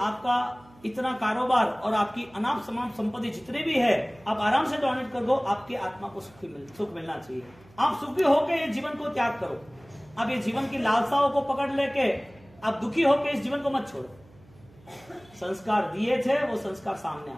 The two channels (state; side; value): noise; right; hum, 26 dB below the sound